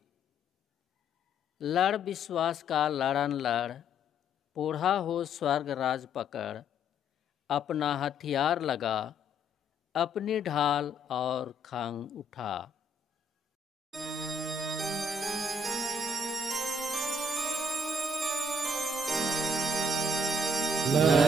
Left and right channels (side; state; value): both; normal; correlation 0.68